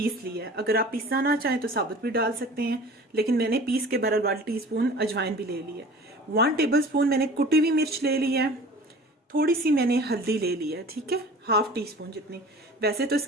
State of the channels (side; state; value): both; normal; correlation 0.42